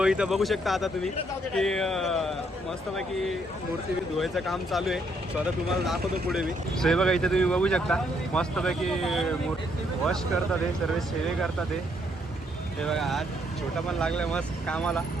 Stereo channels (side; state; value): both; normal; correlation 0.71